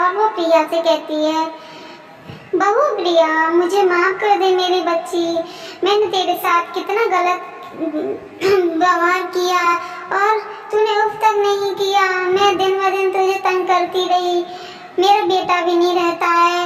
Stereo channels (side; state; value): both; identical; correlation 1.00